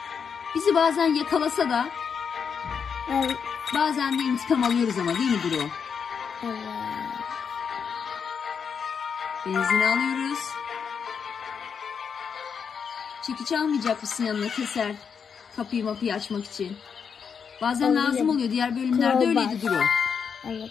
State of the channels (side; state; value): right; quieter; 6.6 dB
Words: Bizi bazen yakalasa da Evet. bazen de intikam alıyoruz ama, değil mi Duru? Evet. Benzini alıyoruz. Çekiç almayacak mısın yanına, keser? Kapıyı açmak için. Bazen lazım oluyor. Diğer bölümlerde Crowbar. öyleydi Duru. Evet,